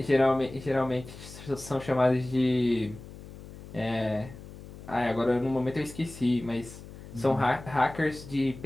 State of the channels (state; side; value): noise; left; hum, 15 dB below the sound